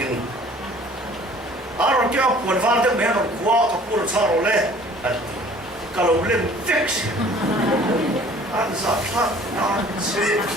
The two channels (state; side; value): normal; both; correlation 0.51